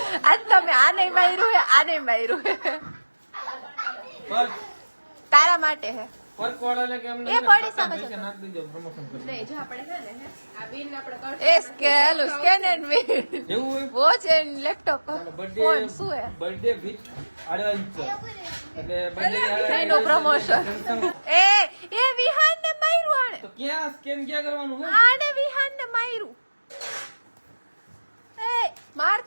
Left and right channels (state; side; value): inverted; both; correlation -1.00